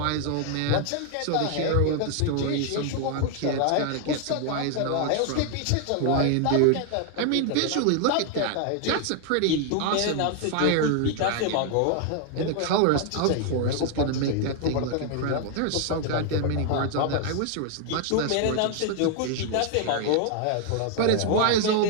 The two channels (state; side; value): different; both; correlation 0.00